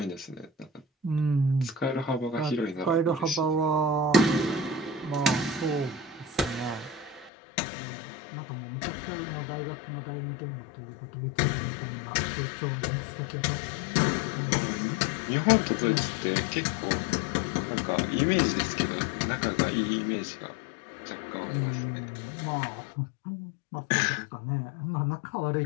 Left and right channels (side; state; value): right; drops out; at 7.3 s